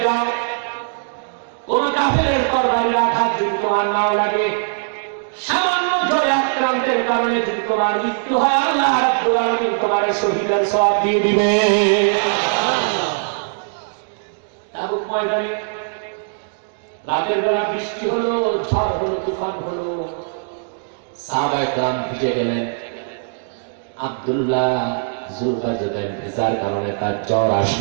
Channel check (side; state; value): left; silent; digital silence